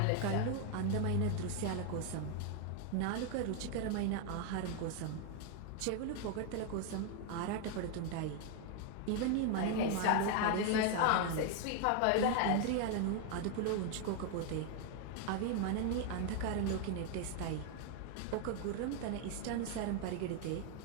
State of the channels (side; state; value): both; different; correlation 0.01